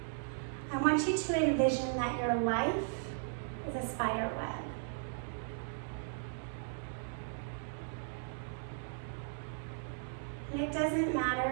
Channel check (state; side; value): silent; left; digital silence